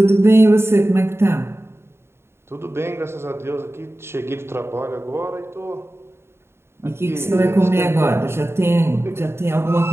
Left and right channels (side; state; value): left; late; 0.12 ms